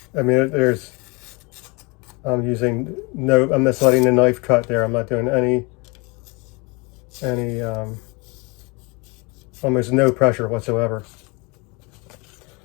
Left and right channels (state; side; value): quieter; right; 28.6 dB